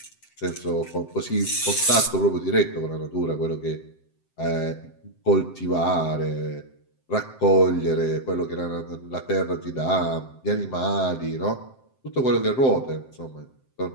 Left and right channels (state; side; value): late; right; 7.7 ms